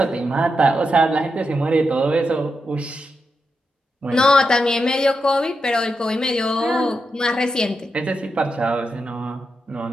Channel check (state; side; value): normal; both; correlation 0.86